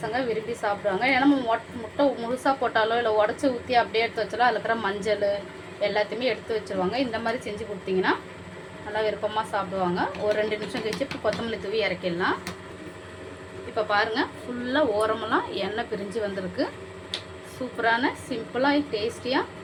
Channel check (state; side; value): identical; both; correlation 1.00